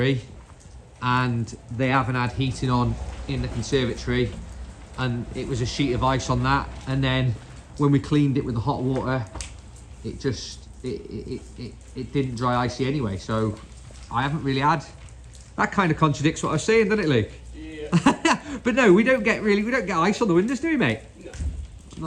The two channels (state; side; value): identical; both; correlation 1.00